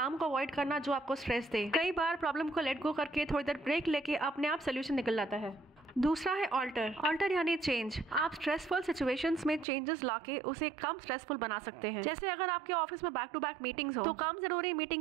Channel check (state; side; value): drops out; left; at 9.7 s